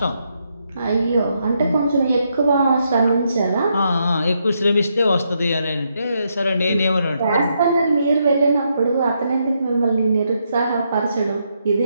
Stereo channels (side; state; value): both; inverted; correlation -0.79